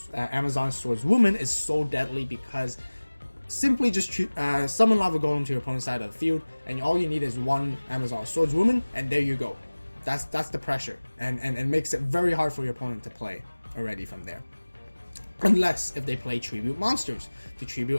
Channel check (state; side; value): inverted; both; correlation -1.00